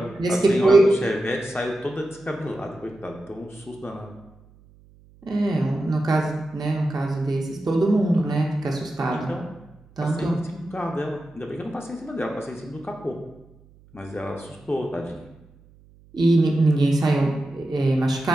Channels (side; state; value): right; noise; hum, 27 dB below the sound